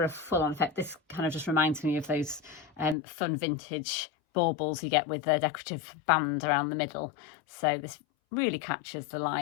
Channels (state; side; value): drops out; right; at 3.0 s